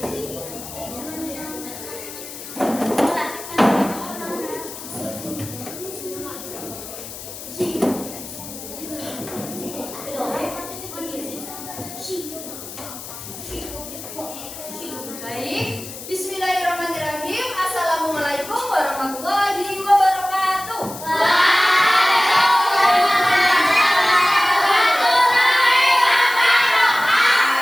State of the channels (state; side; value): noise; left; hiss, 12 dB below the sound